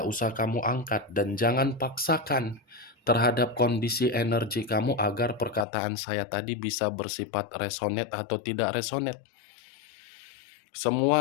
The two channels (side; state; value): right; drops out; at 5.7 s